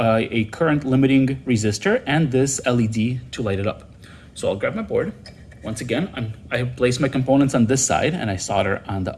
current limiting resistor and this LED to light it up. So I'll grab my board. Once again, I have placed my components on this side, and I solder on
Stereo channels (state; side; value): identical; both; correlation 1.00